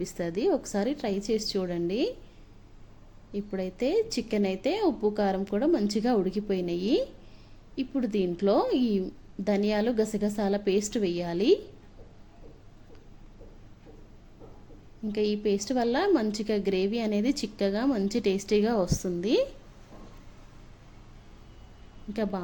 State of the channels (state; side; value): identical; both; correlation 1.00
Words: ఒకసారి ట్రై చేసి చూడండి. ఇప్పుడైతే చికెన్ అయితే ఉప్పు కారం కూడా మంచిగా ఉడికిపోయినాయి. ఇప్పుడు దీంట్లో ఈ ధనియాలు, గసగసాల పేస్ట్ వేయాలి. ఇంకా ఈ పేస్ట్ వల్ల మంచిగా గ్రేవీ అనేది చిక్కగా మంచి టేస్టీగా వస్తుంది. ఇంకా